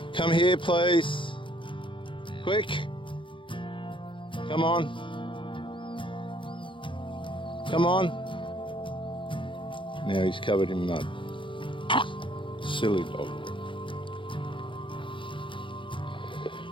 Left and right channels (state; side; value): late; right; 0.24 ms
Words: Come here, please. Quick. Come on. Come on. Now he's covered in mud. Silly dog.